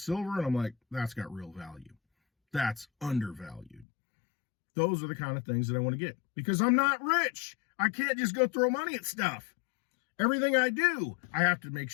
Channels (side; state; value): right; drops out; at 3.9 s